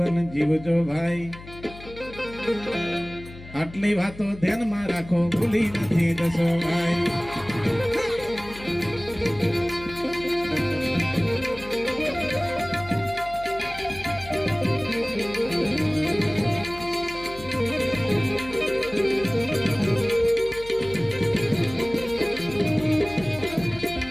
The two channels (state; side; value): noise; left; hum, 16 dB below the sound